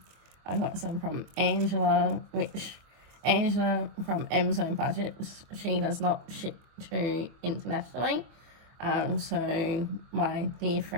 I've got some from Angela, which Angela from Amazon Budgets, she does not ship to internationally. So my dear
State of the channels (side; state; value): left; late; 24 ms